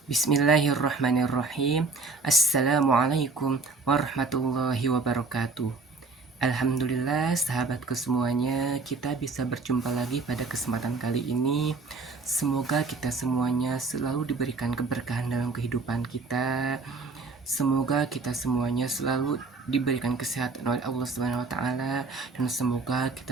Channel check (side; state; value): left; quieter; 4.0 dB